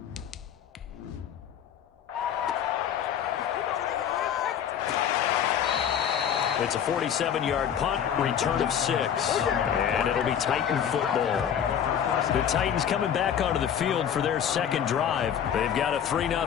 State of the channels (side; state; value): right; quieter; 8.9 dB